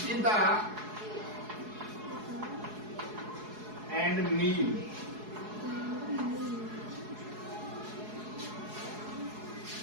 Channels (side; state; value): left; late; 4.7 ms